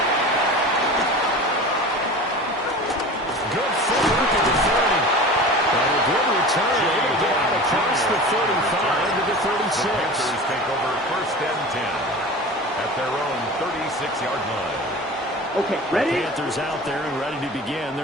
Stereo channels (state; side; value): normal; both; correlation 0.35